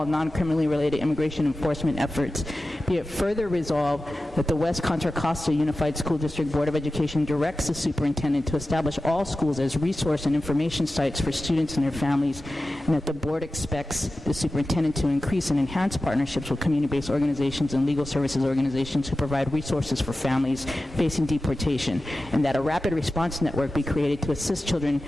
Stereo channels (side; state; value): both; normal; correlation 0.94